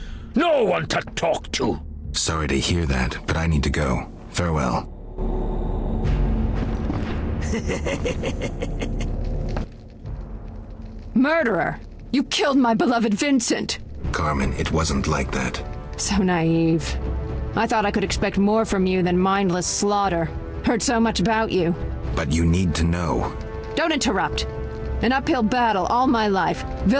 No one to talk to. Sorry to hear that, but I need to go. Farewell. Murderer! You killed my beloved Vincent! Carmen, it wasn't like that. So naive. I thought I could expect more from you than mindless slaughter. Heard so much about you. But you need to know. Don't interrupt. An uphill battle all my life.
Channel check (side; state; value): both; identical; correlation 1.00